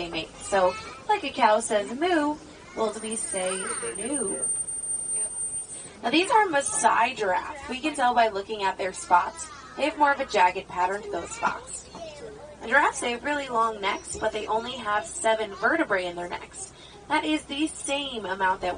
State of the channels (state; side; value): identical; both; correlation 1.00